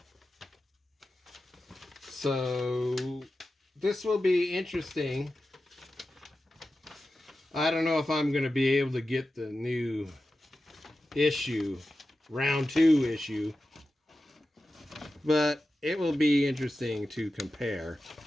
So this will be interesting. I don't know if I'm going to be able to get the new issue, round 2 issue, but it will be interesting to compare.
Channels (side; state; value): both; normal; correlation 0.93